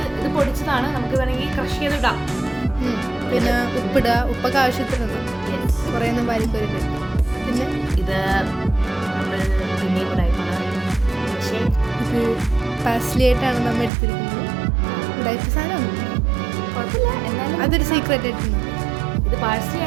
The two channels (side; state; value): left; drops out; at 13.9 s